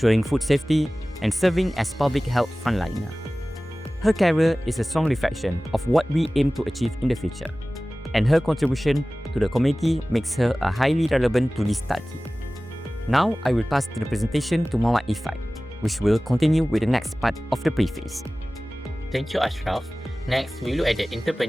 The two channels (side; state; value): both; normal; correlation 0.98